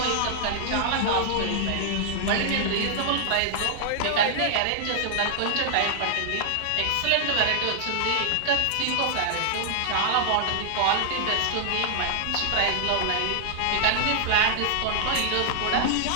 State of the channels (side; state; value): both; different; correlation -0.01